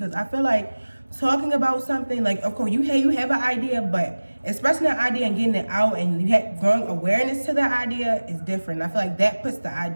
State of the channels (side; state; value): both; inverted; correlation -1.00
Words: I feel like talking about something, like of course you have an idea, but expressing that idea and getting it out and you have growing awareness to that idea is different. I feel like that puts the